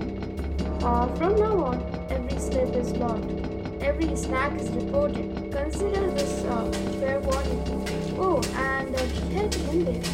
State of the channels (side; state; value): both; identical; correlation 1.00